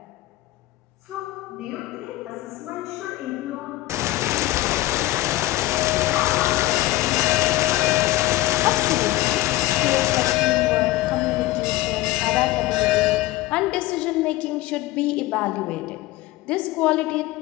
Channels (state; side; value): quieter; right; 17.1 dB